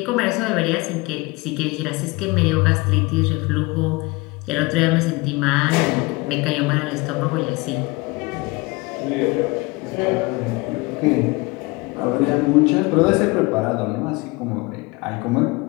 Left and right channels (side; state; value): right; quieter; 24.3 dB